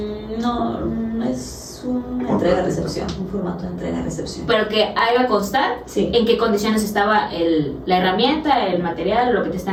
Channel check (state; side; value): identical; both; correlation 1.00